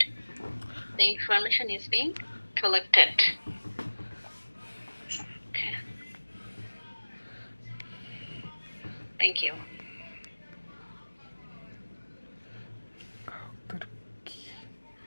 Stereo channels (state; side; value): inverted; both; correlation -1.00